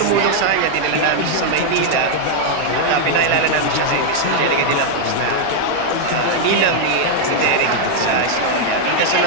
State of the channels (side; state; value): both; different; correlation 0.00